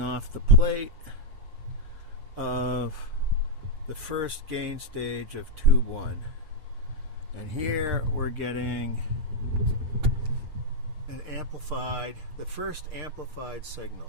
the plate of the first gain stage of tube 1. And here we're getting an amplified, the first amplified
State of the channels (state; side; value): late; left; 6.6 ms